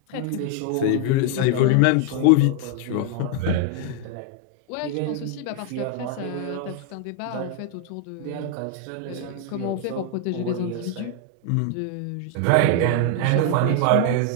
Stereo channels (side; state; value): both; different; correlation 0.00